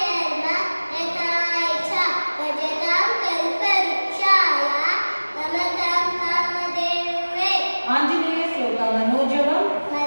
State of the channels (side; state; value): both; inverted; correlation -1.00